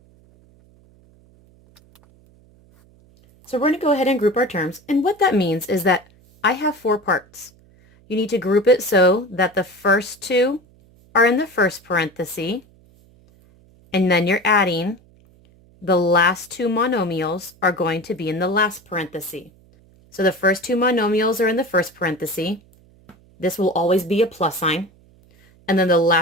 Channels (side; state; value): right; noise; hum, 29 dB below the sound